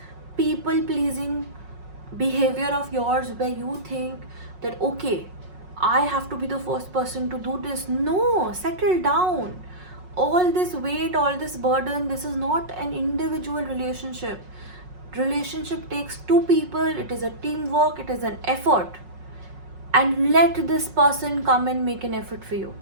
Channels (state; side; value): late; left; 5.5 ms